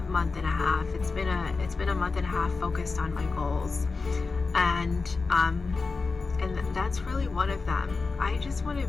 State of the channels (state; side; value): quieter; right; 4.2 dB